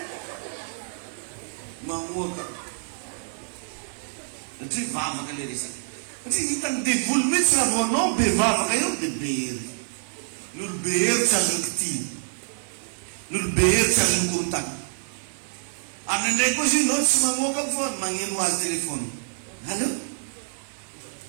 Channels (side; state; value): left; silent; digital silence